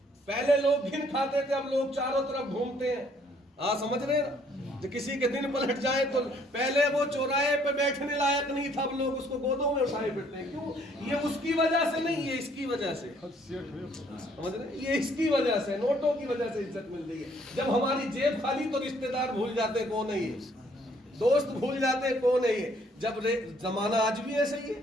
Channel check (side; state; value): both; normal; correlation 0.64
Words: پہلے لوگ گھن کھاتے تھے، اب لوگ چاروں طرف گھومتے ہیں۔ سمجھ رہے ہیں نا؟ جو کسی کے دن پلٹ جائے تو پہلے وہ چوراہے پہ بیٹھنے لائق نہیں تھا، اب لوگ اس کو گودوں میں اٹھائے پھرتے ہیں۔ کیوں؟ یہ اس کی وجہ سے نہیں، یہ اس کی وجہ سے، سمجھ رہے ہیں؟ یہ اس کی وجہ سے، نوٹوں کی وجہ سے عزت مل رہی ہے۔ جب ہماری جیب خالی تو رشتہ دار بھول جاتے ہیں کون ہے یہ، دوست بھول جاتے ہیں کون ہے یہ۔ جب زمانہ آج بھی ایسا ہی ہے،